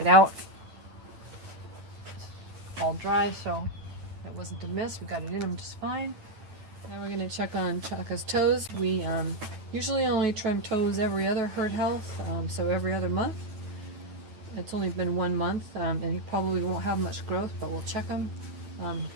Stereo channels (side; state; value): left; late; 9.3 ms